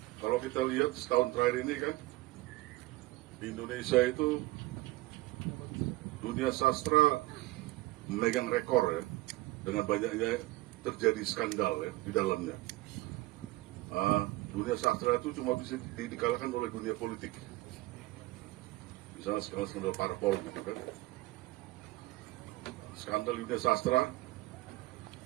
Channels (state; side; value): quieter; left; 19.3 dB